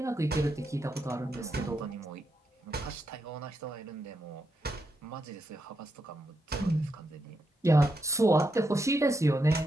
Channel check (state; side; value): normal; both; correlation 0.83